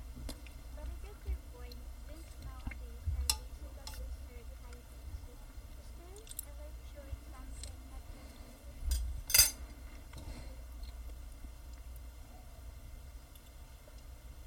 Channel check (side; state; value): both; identical; correlation 1.00